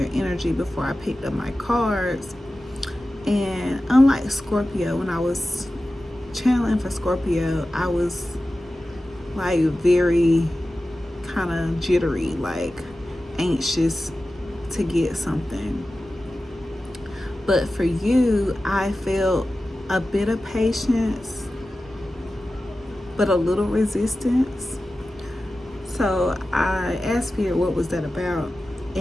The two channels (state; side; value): normal; both; correlation 0.94